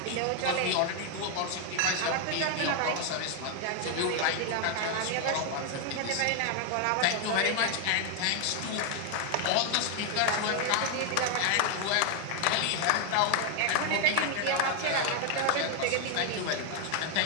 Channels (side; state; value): both; different; correlation 0.00